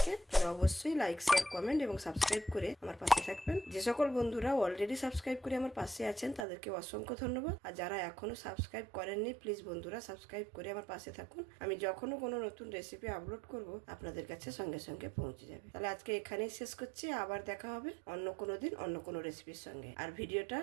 তাহলে অবশ্যই লাইক, শেয়ার, কমেন্ট এবং সাবস্ক্রাইব করে আমার পাশে থাকবেন। যে সকল বন্ধুরা অলরেডি সাবস্ক্রাইব করে আমার পাশে আছেন তাদেরকে অসংখ্য ধন্যবাদ। আর যারা এখনো সাবস্ক্রাইব করেননি প্লিজ বন্ধুরা সাবস্ক্রাইব করে আমার পাশে থাকুন। আমি যখনও কোনো নতুন রেসিপি আপলোড করব আপনাদের কাছে সঙ্গে সঙ্গে পৌঁছে যাবে। তাহলে আজকে এখানেই শেষ করছি। আবার দেখা হবে অন্য কোনো দিন অন্য কোনো রেসিপির সঙ্গে। আর ভিডিওটা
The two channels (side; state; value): left; drops out; at 6.5 s